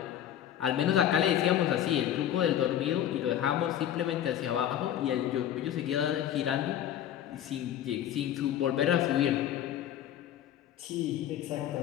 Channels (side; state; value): right; quieter; 11.0 dB